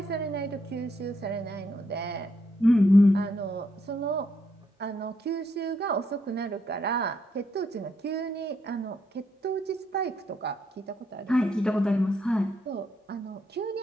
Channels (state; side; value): normal; both; correlation 0.76